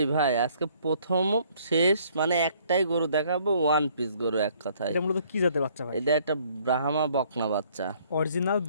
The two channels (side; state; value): both; inverted; correlation -0.62